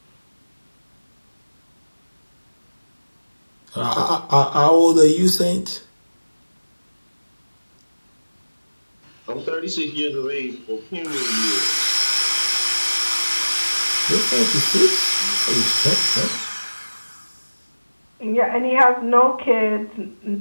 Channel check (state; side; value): inverted; both; correlation -1.00